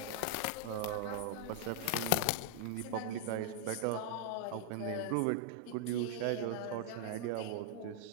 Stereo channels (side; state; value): both; different; correlation -0.01